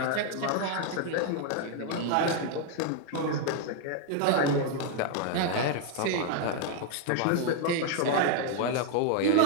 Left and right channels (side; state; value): both; different; correlation 0.00